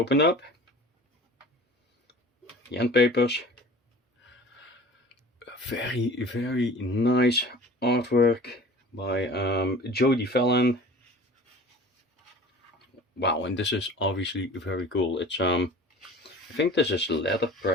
up. The end papers. Very nice artwork by Jodie Fallon. Wow, and this is obviously very cool. It's I think this is leather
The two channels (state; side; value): normal; both; correlation 0.43